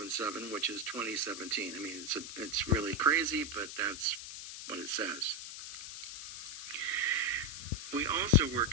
which is 2017. I mean, it's really crazy, but that's what it says. We also were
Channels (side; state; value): left; noise; hiss, 9 dB below the sound